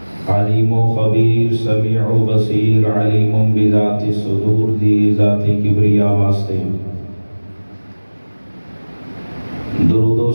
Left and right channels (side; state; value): both; inverted; correlation -1.00